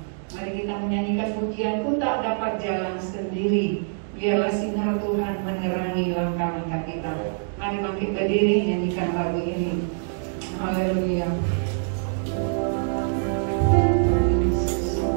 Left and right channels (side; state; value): left; silent; digital silence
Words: Mari kita menyanyikan pujian-Ku tak dapat jalan sendiri. Biarlah sinar Tuhan menerangi langkah-langkah kita. Mari bangkit berdiri nyanyikan lagu ini. Haleluya.